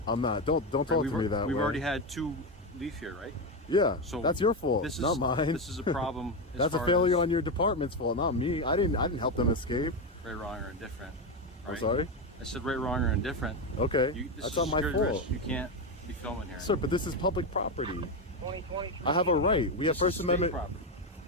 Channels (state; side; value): normal; both; correlation 0.12